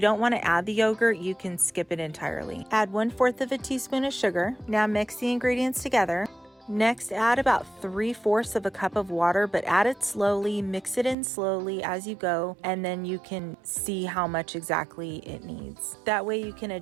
don't want to add the yogurt, you can skip it entirely. Add 1/4 of a teaspoon of sugar. Now mix the ingredients together. Next, add about 3/4 of a cup of water, but add it slowly, mix it in slowly as you go, and then you can see how much exactly it needs. That way you can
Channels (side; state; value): left; drops out; at 11.2 s